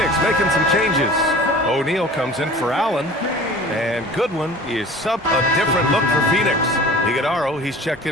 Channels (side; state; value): both; normal; correlation 0.43